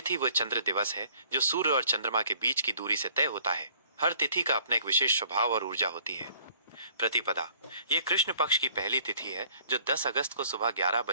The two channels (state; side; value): inverted; both; correlation -0.57